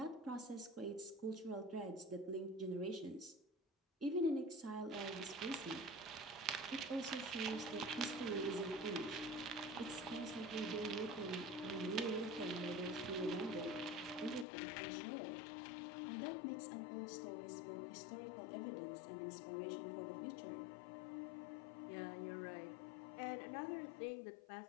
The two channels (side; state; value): right; drops out; at 14.5 s